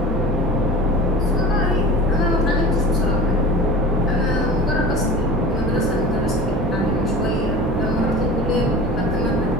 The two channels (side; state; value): both; normal; correlation 0.36